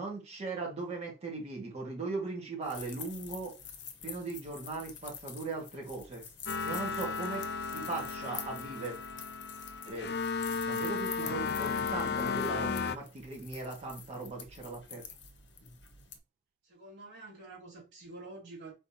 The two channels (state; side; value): normal; both; correlation 0.15